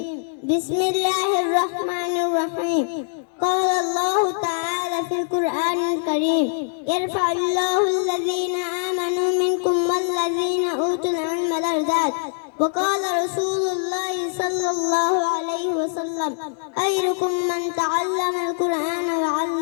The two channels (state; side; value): silent; right; digital silence